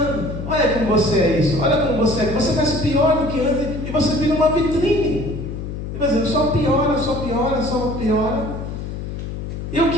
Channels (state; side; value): noise; left; hum, 7 dB below the sound